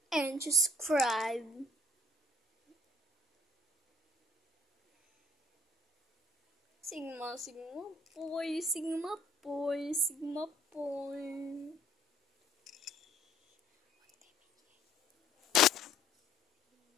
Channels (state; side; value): normal; both; correlation 0.57